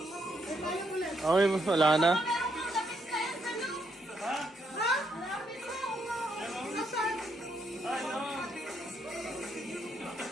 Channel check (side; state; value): both; normal; correlation 0.75